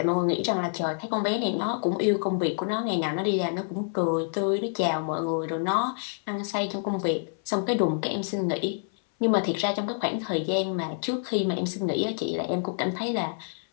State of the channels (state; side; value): silent; right; 60 dB below the other